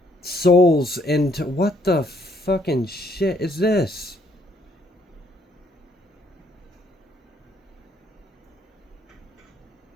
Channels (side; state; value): both; normal; correlation 0.68